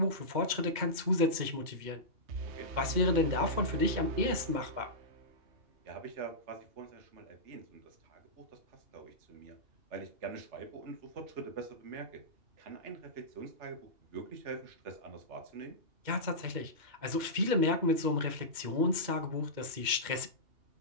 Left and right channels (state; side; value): late; left; 2.2 ms